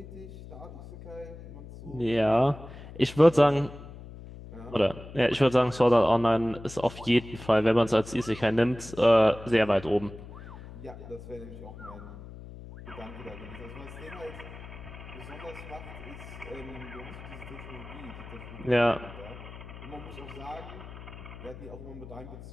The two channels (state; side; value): noise; left; hum, 14 dB below the sound